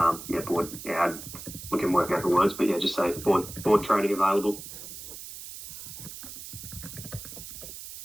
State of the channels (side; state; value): right; noise; hiss, 12 dB below the sound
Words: Board. Yeah, we can work out the words, but yeah, just say board training available.